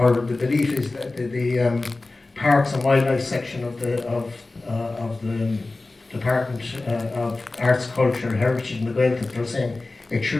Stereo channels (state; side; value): quieter; right; 3.3 dB